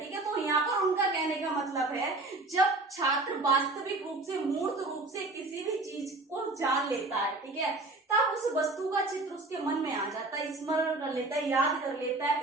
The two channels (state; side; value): quieter; left; 3.1 dB